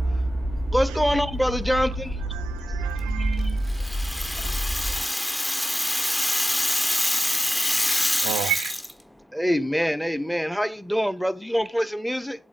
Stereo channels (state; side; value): normal; both; correlation 0.93